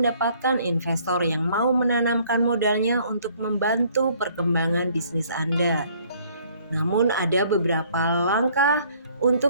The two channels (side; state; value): both; inverted; correlation -0.60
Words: investor yang mau menanamkan modalnya untuk membantu perkembangan bisnis Anda. Namun ada beberapa langkah